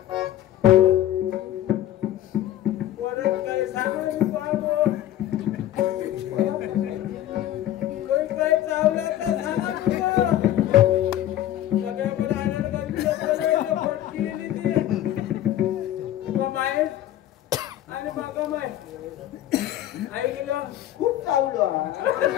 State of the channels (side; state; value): right; quieter; 12.7 dB